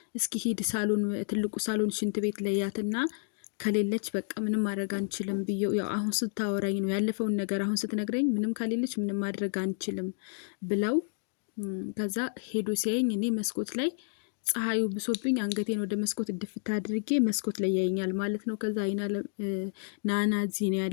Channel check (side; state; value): right; silent; digital silence